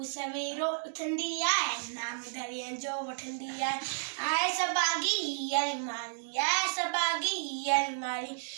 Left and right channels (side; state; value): left; silent; digital silence